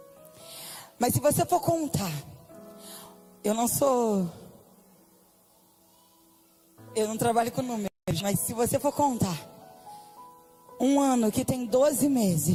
Mas se você for contar, eu não trabalho com números, mas se você for contar, um ano que tem 12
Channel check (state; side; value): identical; both; correlation 1.00